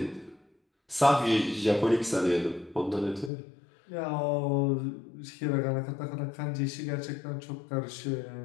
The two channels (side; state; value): right; drops out; at 3.3 s